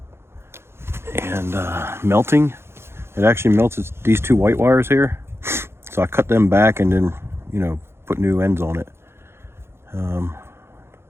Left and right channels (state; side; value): late; left; 0.12 ms